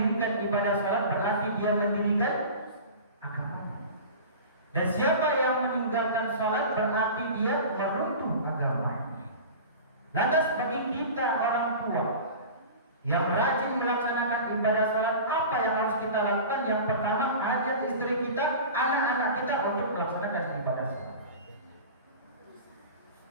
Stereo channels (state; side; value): inverted; both; correlation -0.35